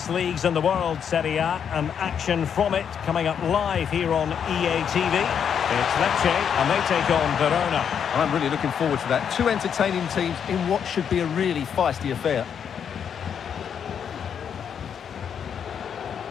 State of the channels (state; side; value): quieter; right; 7.8 dB